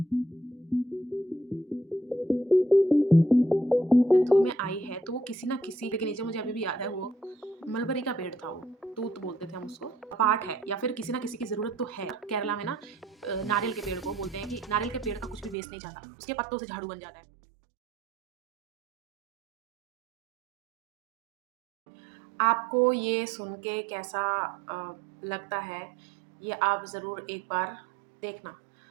में आई है तो वो किसी ना किसी के नीचे, मुझे अभी भी याद है, वो मलबरी का पेड़ था, वो तूत बोलते थे हम उसको, पार्ट है या फिर किसी ना किसी की जरूरत तो है। केरला में ना नारियल के पेड़ को बोलते हैं कि नारियल के पेड़ का कुछ भी वेस्ट नहीं जाता, उसके पत्तों से झाड़ू बन जाता है। आपको ये सुन के कैसा लगता है, ये आप ज़रूर एक बार देखना,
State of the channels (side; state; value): left; drops out; at 15.6 s